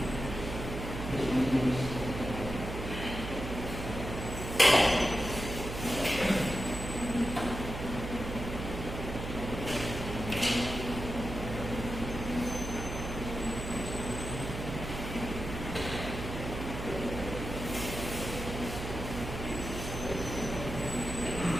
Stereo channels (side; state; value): right; noise; hum, 6 dB below the sound